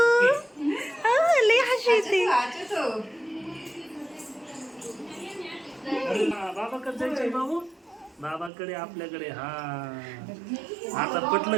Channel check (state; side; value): drops out; left; at 8.5 s